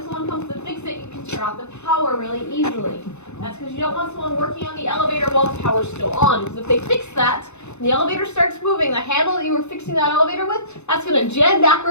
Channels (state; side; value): late; right; 0.82 ms